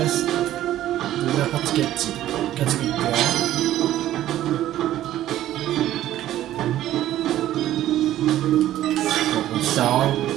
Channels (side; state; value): left; quieter; 13.3 dB